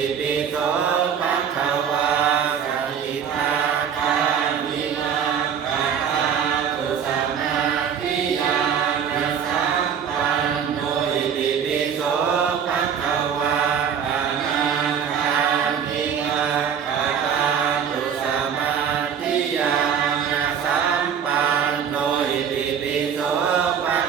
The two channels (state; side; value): quieter; left; 7.8 dB